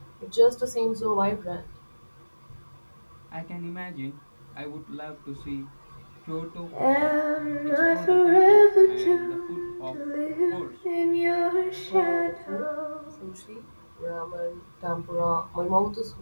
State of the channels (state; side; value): inverted; both; correlation -1.00